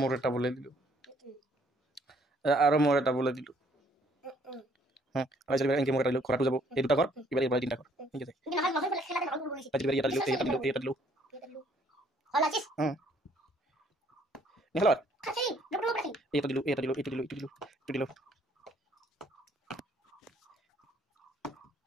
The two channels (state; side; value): normal; both; correlation 0.63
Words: মোর এটা বলে দিল আরো মোর এটা বলে দিল হ্যাঁ আমি সেটা এনকে মোর এটা দিল খরাটু যাব এই দুটা কর এবার এবার তিনটা কর ঠিক আছে কিন্তু না বসে খেলাটা ভালো করে বলিস আজ এবার এটা দিল এটা দিল এটা দিল হল আছিস হ্যাঁ নিহলা খাসি ডক্টর খাসি এটা দিল এটা দিল এটা দিল এটা দিল এটা দিল